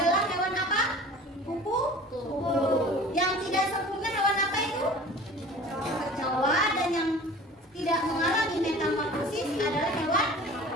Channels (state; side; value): normal; both; correlation 0.43